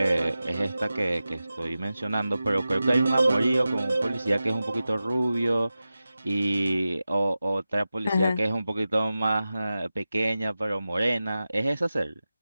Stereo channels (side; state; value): both; inverted; correlation -0.94